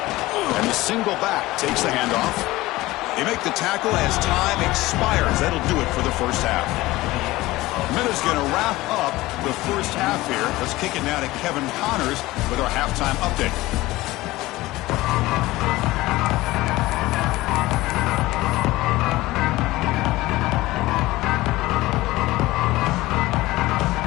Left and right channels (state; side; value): quieter; right; 18.6 dB